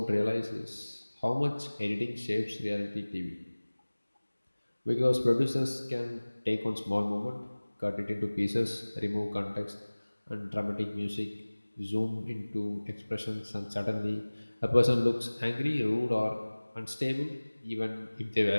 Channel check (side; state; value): both; inverted; correlation -1.00